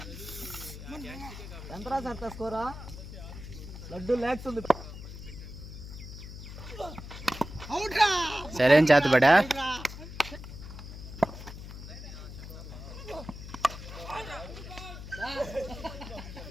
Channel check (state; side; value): noise; left; hum, 11 dB below the sound